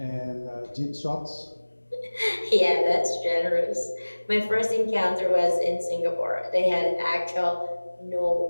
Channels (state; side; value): inverted; both; correlation -1.00